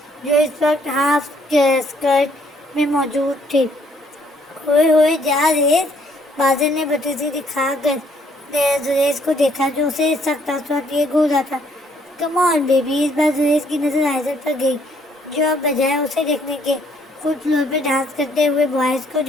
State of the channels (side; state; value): both; normal; correlation 0.66